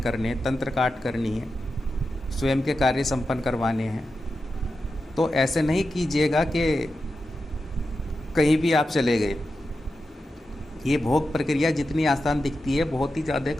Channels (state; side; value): normal; both; correlation 0.90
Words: हैं, तंत्र काट करनी है, स्वयं के कार्य संपन्न करवाने हैं, तो ऐसे नहीं कीजिएगा कि कहीं भी आप चले गए। ये भोग प्रक्रिया जितनी आसान दिखती है, बहुत ही ज़्यादा